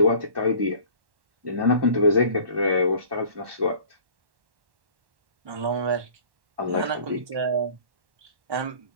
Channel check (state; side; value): late; left; 1.1 ms